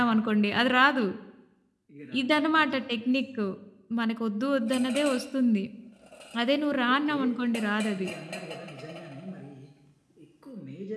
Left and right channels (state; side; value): identical; both; correlation 1.00